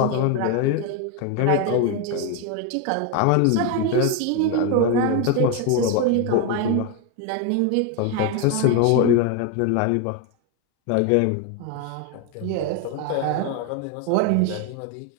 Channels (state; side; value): different; both; correlation 0.01